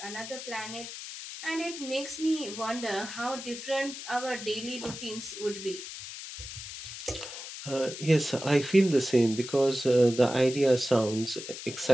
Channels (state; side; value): noise; left; hiss, 10 dB below the sound